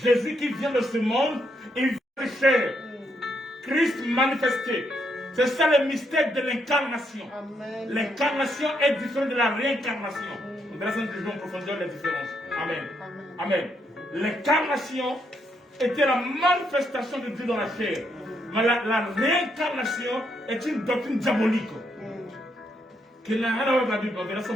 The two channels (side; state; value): both; normal; correlation 0.77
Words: qui vient de ce monde, il vient de chair. Christ manifesté. C'est ça le mystère de l'incarnation. Amen. L'incarnation est différente de la réincarnation. On verra ça en profondeur les différences. Amen. Amen. L'incarnation était la manifestation de Dieu dans la chair. Mais la réincarnation est une doctrine diabolique. Qui n'a rien à voir avec la Bible. On verra ça